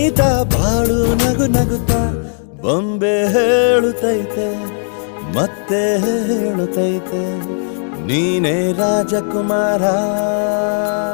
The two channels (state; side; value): silent; right; 66 dB below the other